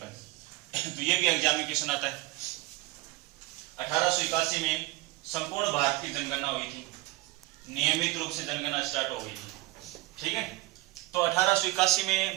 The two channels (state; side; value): quieter; left; 19.4 dB